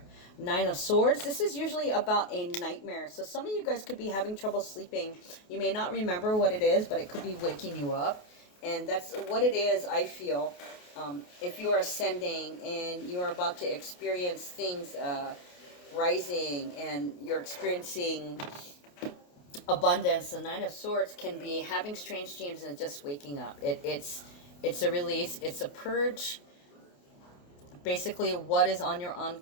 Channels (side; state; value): right; late; 28 ms